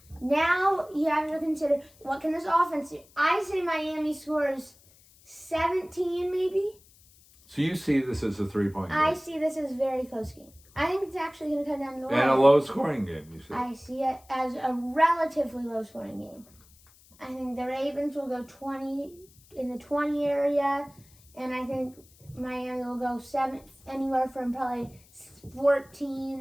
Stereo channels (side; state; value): left; noise; hiss, 27 dB below the sound